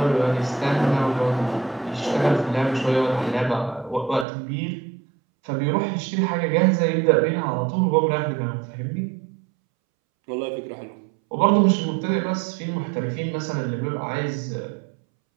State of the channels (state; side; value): drops out; left; at 4.2 s